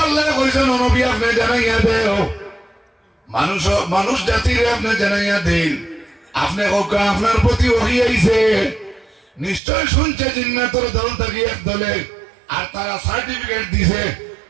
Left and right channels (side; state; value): left; drops out; at 9.6 s